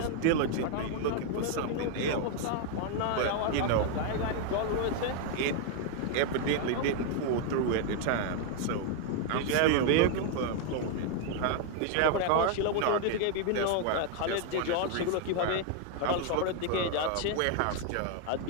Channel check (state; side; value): different; both; correlation 0.00